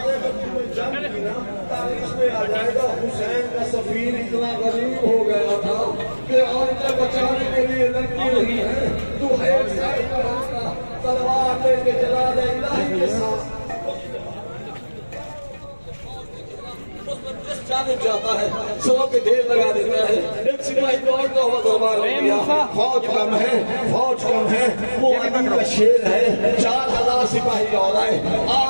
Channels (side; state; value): both; inverted; correlation -1.00